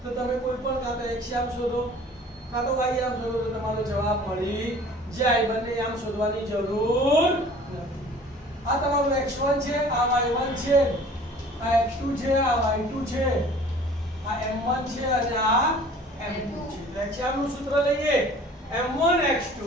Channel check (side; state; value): both; normal; correlation 0.48